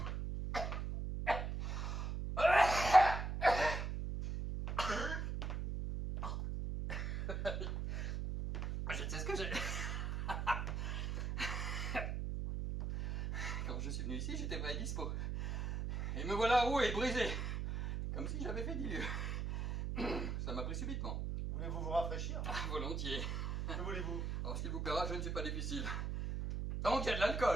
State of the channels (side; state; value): right; noise; hum, 2 dB below the sound